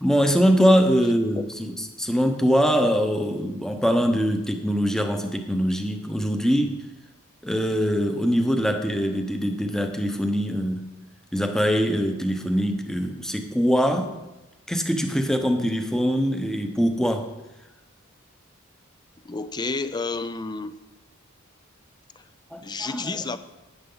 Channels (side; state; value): both; normal; correlation 0.88